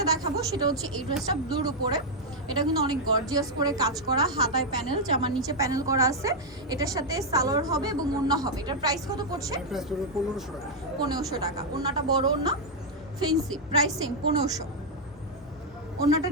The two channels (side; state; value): both; normal; correlation -0.02